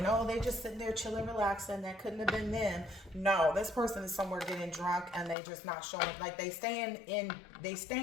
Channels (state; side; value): drops out; right; at 5.4 s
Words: oh, they just sitting there chilling, relaxing. That couldn't have been them. No, this person is somewhere getting drunk and they just not showing. Like they staying